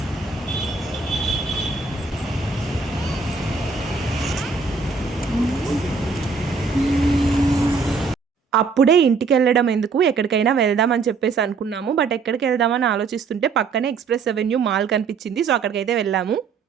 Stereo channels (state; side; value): quieter; left; 4.7 dB